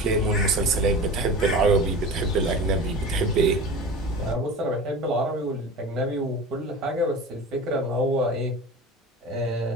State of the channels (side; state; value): both; normal; correlation 0.34